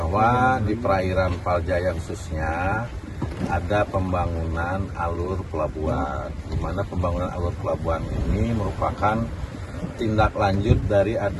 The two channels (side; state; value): both; identical; correlation 1.00